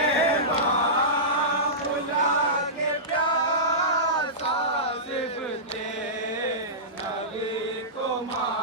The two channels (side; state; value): both; normal; correlation -0.17